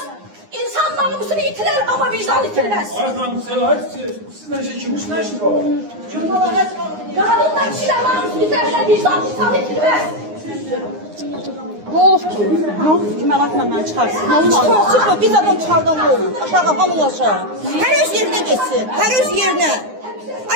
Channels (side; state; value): left; late; 9.7 ms